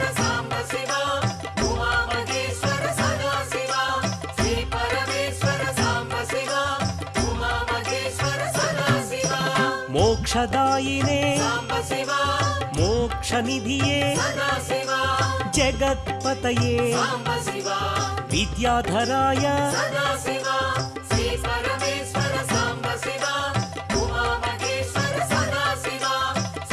साम्ब शिवा उमा महेश्वर सदा शिवा श्री परमेश्वर साम्ब शिवा उमा महेश्वर सदा शिवा मोक्षदायिने साम्ब शिवा मोक्षनिधिये सदा शिवा जगत्पतये साम्ब शिवा विद्याधराय सदा शिवा श्री परमेश्वर साम्ब शिवा उमा महेश्वर सदा शिवा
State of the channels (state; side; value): identical; both; correlation 1.00